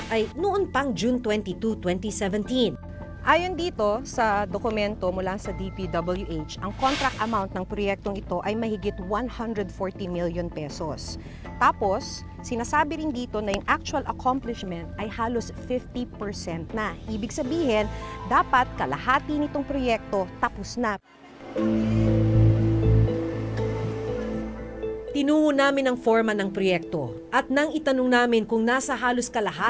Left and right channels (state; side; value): identical; both; correlation 1.00